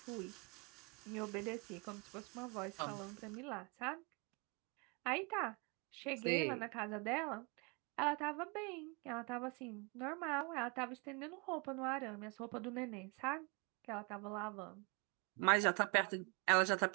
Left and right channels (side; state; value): left; quieter; 31.9 dB